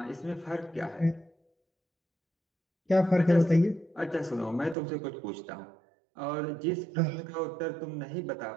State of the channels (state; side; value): drops out; left; at 4.8 s